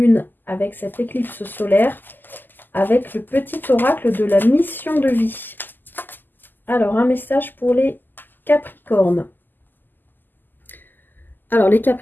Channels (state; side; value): late; right; 0.090 ms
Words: avec cette éclipse solaire, avec le petit oracle de la mission de vie. Alors, un message pour les Capricornes. Alors, les